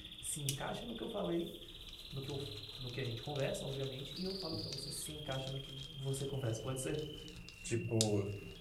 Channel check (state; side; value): identical; both; correlation 1.00